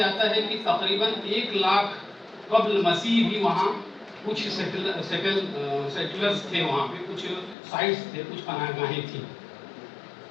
ہے کہ تقریباً 1 لاکھ قبل مسیح بھی وہاں کچھ سیٹلرز تھے، وہاں پہ کچھ سائٹس تھے، کچھ پناہ گاہیں تھیں۔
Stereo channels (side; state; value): right; drops out; at 7.6 s